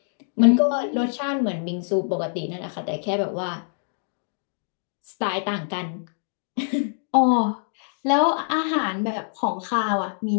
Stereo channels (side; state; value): right; silent; digital silence